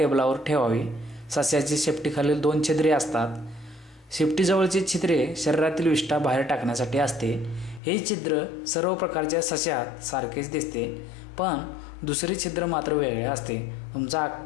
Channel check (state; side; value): drops out; right; at 7.8 s